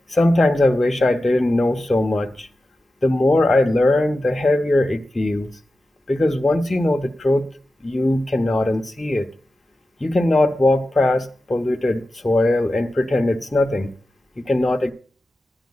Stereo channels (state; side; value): normal; both; correlation 0.93